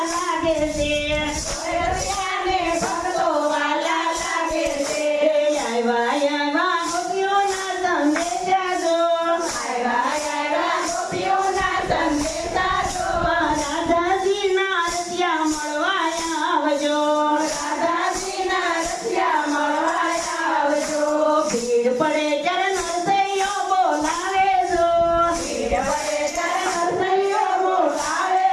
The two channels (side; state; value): both; identical; correlation 1.00